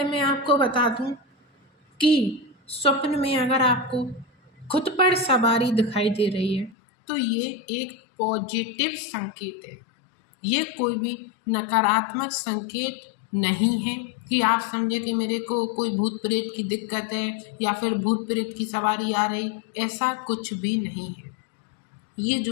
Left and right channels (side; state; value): right; drops out; at 6.8 s